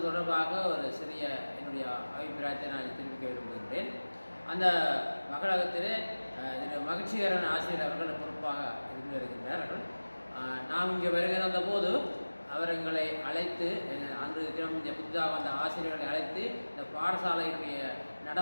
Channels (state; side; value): inverted; both; correlation -1.00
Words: தொடர்பாக ஒரு சிறிய என்னுடைய அபிப்பிராயத்தை நான் தெரிவிக்க விரும்புகின்றேன். அந்த மகளகத்திலே மகிழ்ச்சிகரன் ஆசிரியர் அவர்கள் பொறுப்பாக இருந்து வருகின்றார்கள். நாம் இங்கே வருகை வந்தபோது அவர் எங்களை அழைத்து அன்று தினம் இந்த புதிதாக வந்த ஆசிரியர்களை அழைத்து இந்த பாடசாலையினுடைய